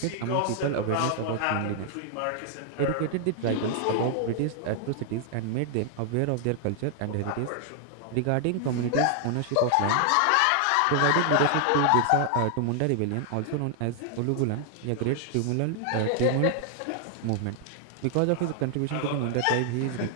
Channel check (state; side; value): different; both; correlation 0.00